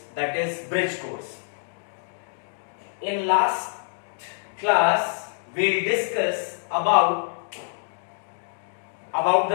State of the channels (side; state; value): right; silent; digital silence